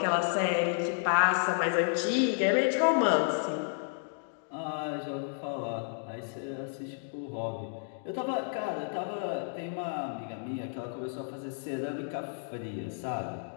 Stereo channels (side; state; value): right; silent; digital silence